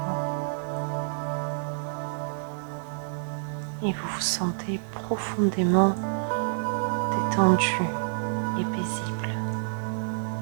Et vous vous sentez profondément détendu et paisible.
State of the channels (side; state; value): left; silent; digital silence